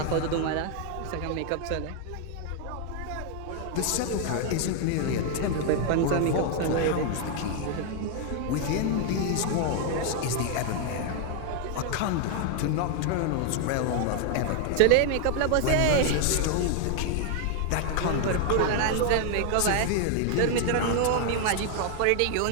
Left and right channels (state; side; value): different; both; correlation 0.00